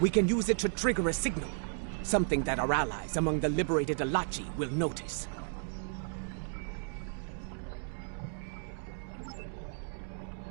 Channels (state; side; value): silent; left; 55 dB below the other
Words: can use it to trigger a signal. Something that our allies among the liberated Alachi will notice.